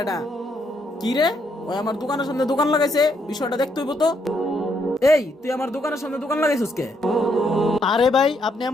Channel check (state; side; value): normal; both; correlation 0.74